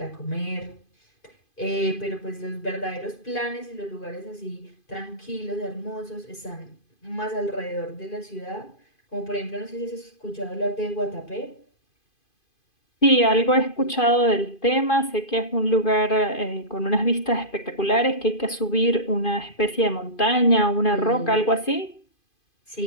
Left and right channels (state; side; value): late; right; 2.5 ms